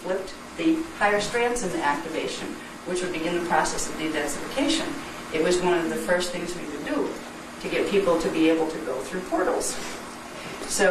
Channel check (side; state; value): both; identical; correlation 1.00